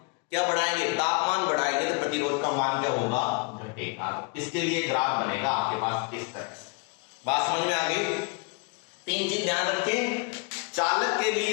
क्या बढ़ाएंगे, तापमान बढ़ाएंगे, तो प्रतिरोध का मान क्या होगा, घटेगा। इसके लिए ग्राफ बनेगा आपके पास इस तरह से। बात समझ में आ गई। 3 चीज ध्यान रखें, चालक के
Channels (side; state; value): right; quieter; 31.2 dB